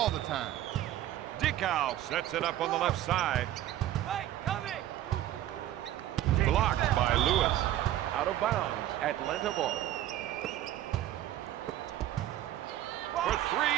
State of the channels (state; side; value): quieter; left; 13.0 dB